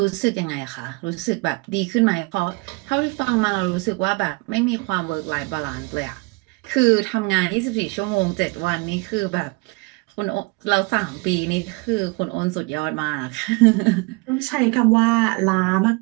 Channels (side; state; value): left; quieter; 27.3 dB